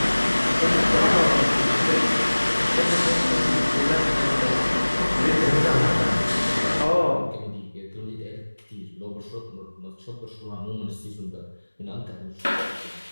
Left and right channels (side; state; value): both; inverted; correlation -1.00